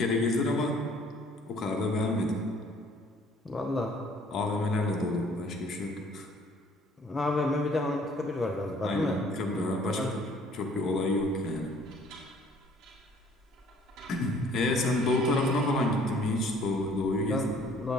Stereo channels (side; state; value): both; normal; correlation 0.57